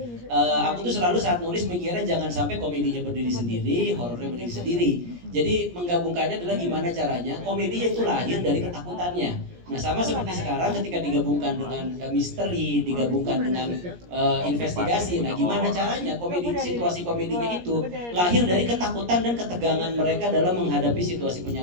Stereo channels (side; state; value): left; late; 17 ms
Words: aku tuh selalu saat nulis mikirnya jangan sampai komedinya berdiri sendiri, horornya berdiri sendiri. Jadi menggabungkannya adalah gimana caranya komedinya itu lahir dari ketakutannya. Nah sama seperti sekarang ketika digabungkan dengan misteri, digabungkan dengan investigasi. Nah gimana caranya situasi komedinya itu lahir dari ketakutan dan ketegangan mereka dalam menghadapi situasi